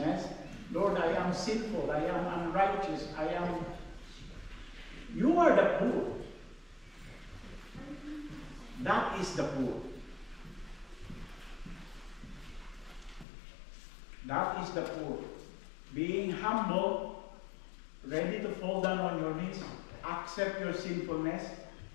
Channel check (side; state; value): right; drops out; at 13.2 s